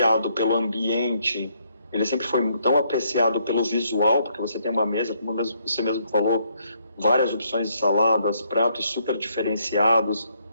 pelo ambiente, ele sempre foi tão apreciado pelo visual, porque você tem uma mesa, como você mesmo falou, várias opções de saladas, pratos super diferenciados,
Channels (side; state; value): both; inverted; correlation -0.72